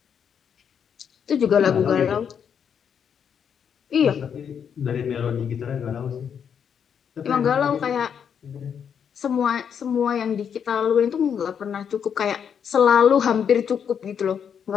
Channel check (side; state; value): right; quieter; 7.7 dB